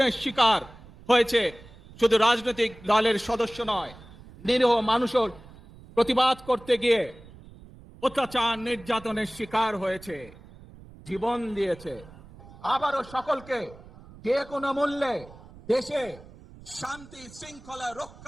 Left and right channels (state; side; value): noise; right; rumble, 20 dB below the sound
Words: শিকার হয়েছে শুধু রাজনৈতিক দলের সদস্য নয়, নিরীহ মানুষের প্রতিবাদ করতে গিয়ে অত্যাচার নির্যাতনের শিকার হয়েছে, জীবন দিয়েছে। আবারও সকলকে যে কোনো মূল্যে দেশে শান্তি শৃঙ্খলা